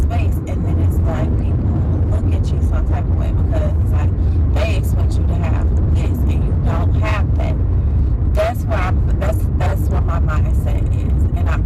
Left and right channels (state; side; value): identical; both; correlation 1.00